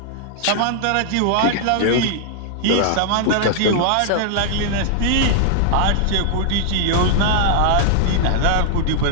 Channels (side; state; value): both; different; correlation 0.00